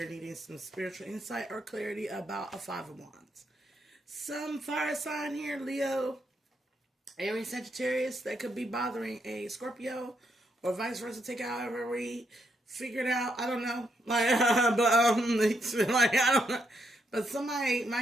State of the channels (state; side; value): normal; both; correlation 0.78